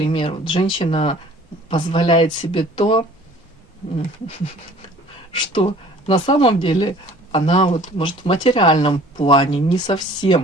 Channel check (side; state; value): both; normal; correlation 0.50